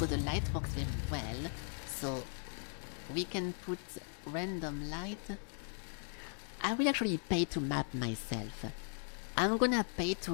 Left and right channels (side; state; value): right; silent; 52 dB below the other